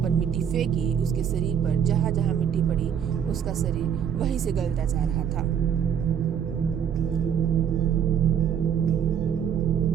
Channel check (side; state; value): left; quieter; 8.3 dB